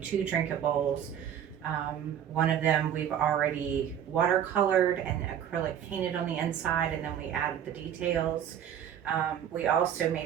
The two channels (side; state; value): left; quieter; 9.5 dB